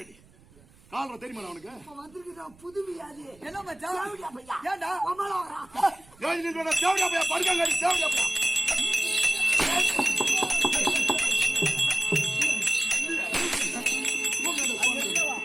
கால்றா தெரியுமா அவனுக்கு? வந்திருக்குதா புது வியாதி. என்ன மச்சான்? ஏண்டா ஏன் நீ சொன்ன தேவடியா பையா படுக்காங்க தேவடியா பையா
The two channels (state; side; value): noise; right; rumble, 27 dB below the sound